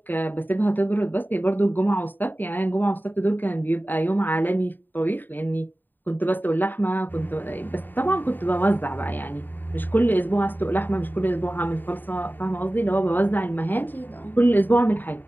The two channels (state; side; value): late; right; 0.091 ms